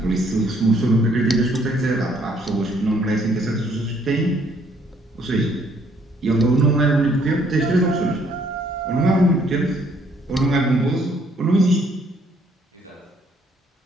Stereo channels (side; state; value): both; normal; correlation 0.65